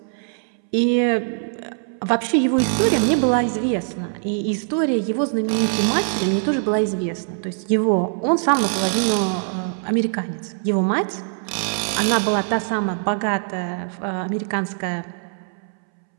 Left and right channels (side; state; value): left; silent; 64 dB below the other